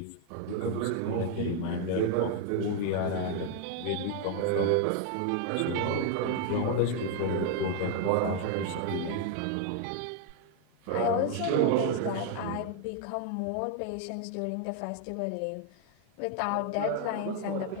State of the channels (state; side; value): different; both; correlation 0.00